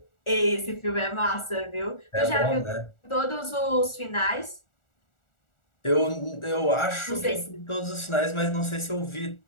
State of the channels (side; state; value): right; late; 1.4 ms